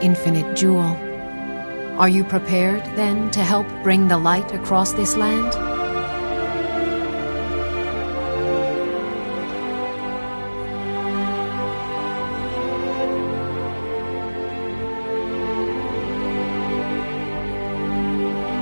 infinite jewel. Are you prepared, then, to help bring the light across this land?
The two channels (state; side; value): inverted; both; correlation -1.00